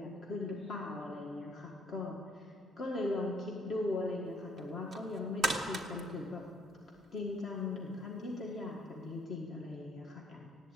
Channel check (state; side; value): normal; both; correlation 0.65